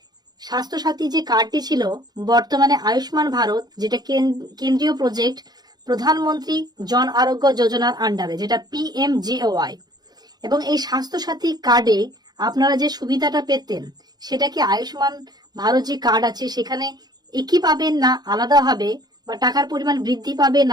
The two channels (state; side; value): late; left; 0.19 ms